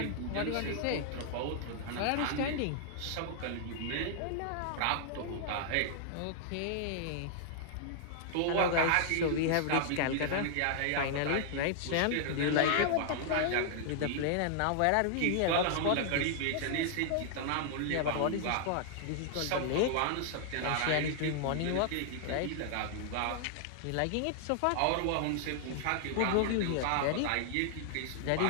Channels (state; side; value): different; both; correlation -0.01